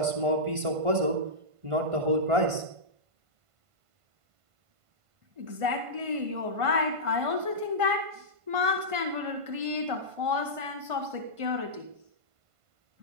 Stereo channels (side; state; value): left; late; 1.5 ms